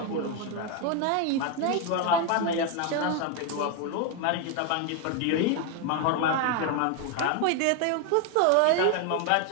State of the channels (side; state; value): both; different; correlation 0.01